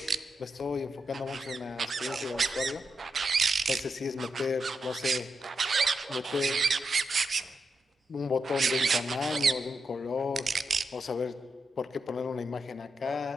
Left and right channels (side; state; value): both; normal; correlation 0.85